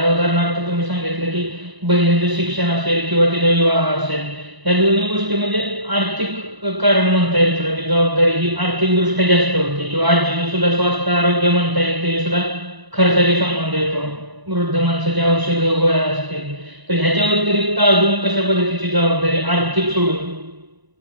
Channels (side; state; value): left; late; 1.0 ms